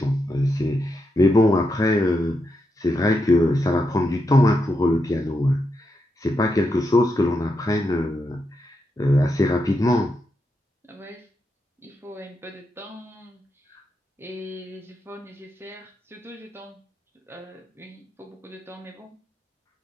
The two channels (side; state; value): both; normal; correlation 0.84